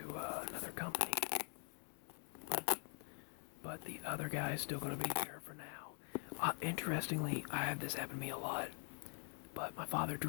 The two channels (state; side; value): quieter; right; 39.7 dB